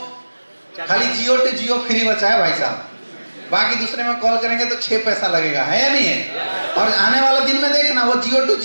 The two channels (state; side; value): inverted; both; correlation -1.00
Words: खाली जियो टू जियो फ्री बचा है भाई साहब, बाकी दूसरे में कॉल करेंगे तो 6 पैसा लगेगा, है या नहीं है? और आने वाला दिन में देखना वो जियो टू